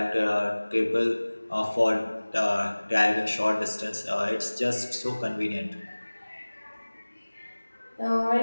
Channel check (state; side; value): inverted; both; correlation -1.00